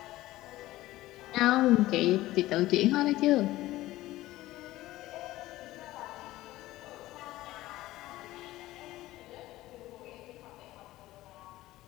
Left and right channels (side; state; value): right; quieter; 16.7 dB